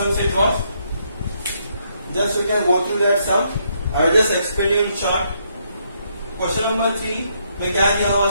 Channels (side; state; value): both; inverted; correlation -0.74